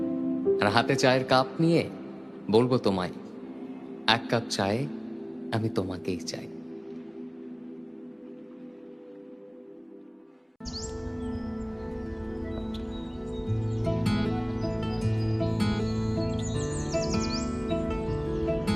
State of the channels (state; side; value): identical; both; correlation 1.00